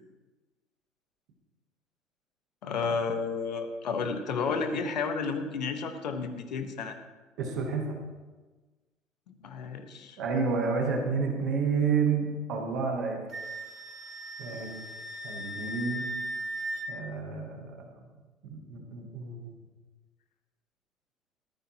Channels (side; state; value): both; normal; correlation 0.35